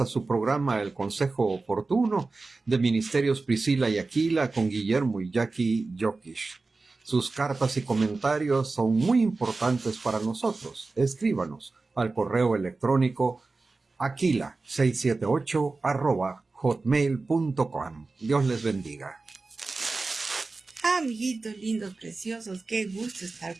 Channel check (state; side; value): quieter; left; 3.7 dB